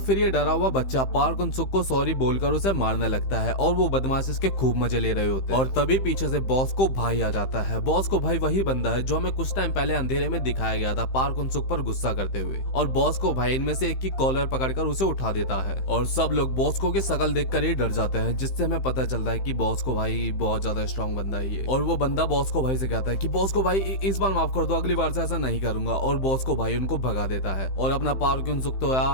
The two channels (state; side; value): late; right; 15 ms